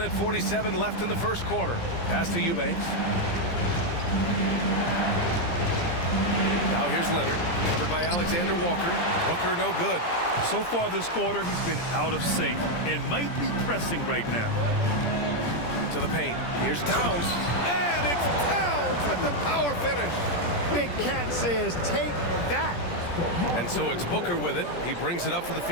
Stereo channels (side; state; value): right; late; 17 ms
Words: 47 left in the first quarter. Pass to Eubanks. Now here's Leonard, covered by Alexander Walker. Booker no good. So far this quarter, he's been out of sync and might be pressing right now. To the paint. Here's Towns. And it's Towns with the power finish. Big Cat says, take that. And so it's Booker with it. He brings it up for the